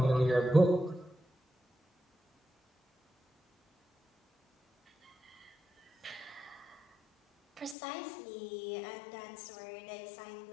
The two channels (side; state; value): right; drops out; at 7.8 s